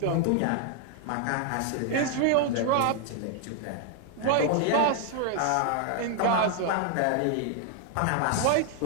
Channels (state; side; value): different; both; correlation 0.00